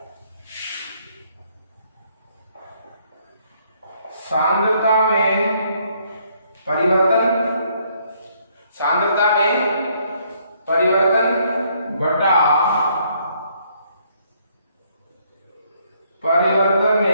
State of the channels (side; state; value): both; inverted; correlation -0.68